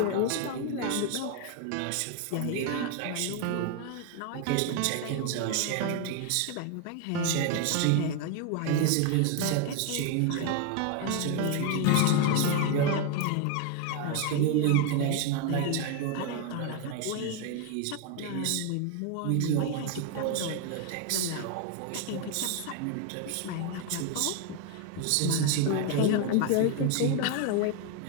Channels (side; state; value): both; different; correlation 0.01